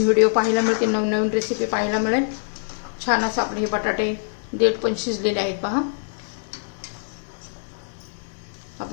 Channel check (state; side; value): silent; right; digital silence